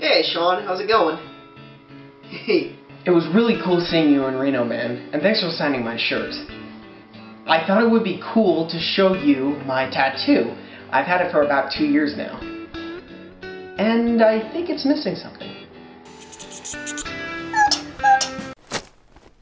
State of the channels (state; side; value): identical; both; correlation 1.00